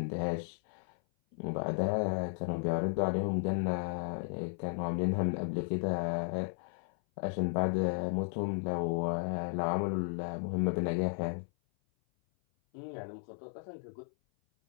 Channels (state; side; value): silent; right; 55 dB below the other